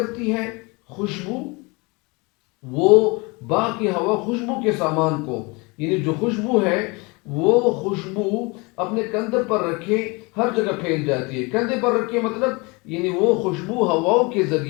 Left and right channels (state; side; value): quieter; right; 27.3 dB